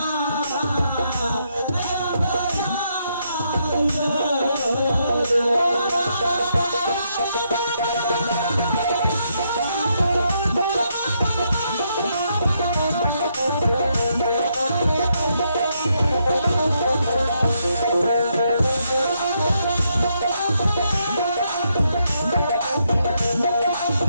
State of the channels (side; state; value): both; inverted; correlation -0.77